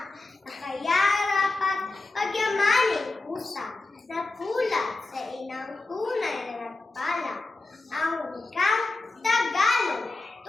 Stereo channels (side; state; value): right; quieter; 3.2 dB